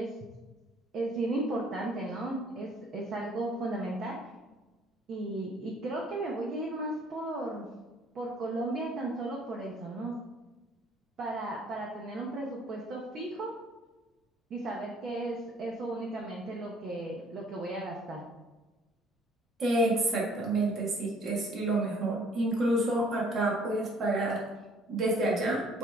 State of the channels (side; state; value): both; normal; correlation 0.58